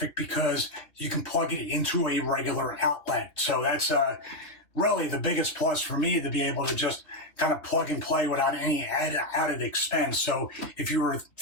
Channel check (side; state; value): right; late; 2.9 ms